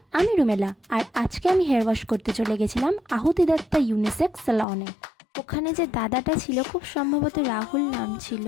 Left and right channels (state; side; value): drops out; right; at 4.7 s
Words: আমি রুমেলা, আর আজকে আমি হেয়ার ওয়াশ করতে চলে গেছিলাম আহুতি দত্তা ইউনিসেক্স সালনে। ওখানে যে দাদাটা ছিল, খুব সম্ভবত রাহুল নাম ছিল,